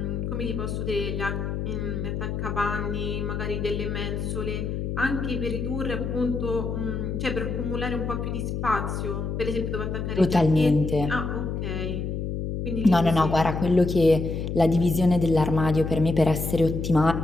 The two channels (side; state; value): left; noise; hum, 3 dB below the sound